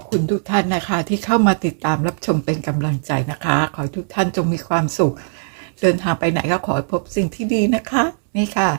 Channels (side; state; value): left; silent; 66 dB below the other